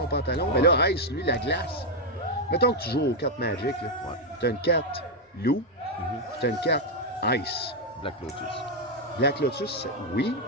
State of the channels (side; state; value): both; normal; correlation 0.00